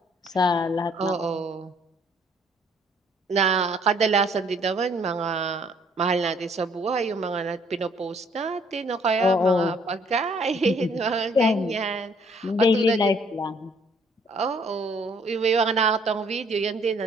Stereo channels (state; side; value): normal; both; correlation 0.62